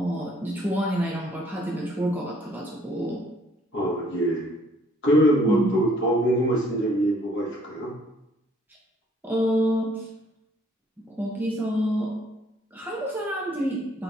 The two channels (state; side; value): normal; both; correlation 0.62